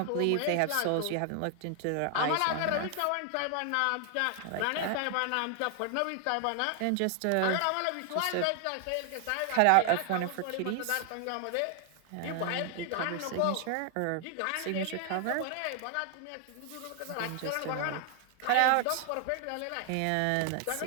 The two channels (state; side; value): different; both; correlation 0.00